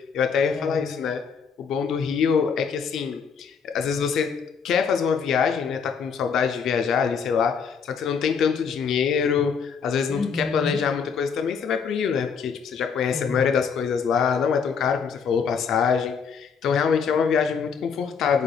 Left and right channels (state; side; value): quieter; right; 6.3 dB